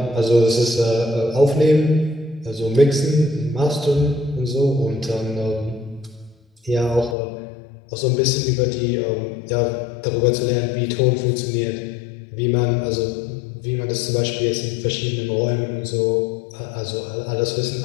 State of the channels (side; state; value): right; drops out; at 7.2 s